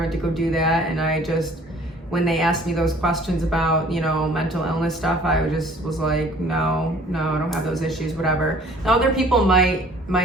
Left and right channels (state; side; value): normal; both; correlation 0.53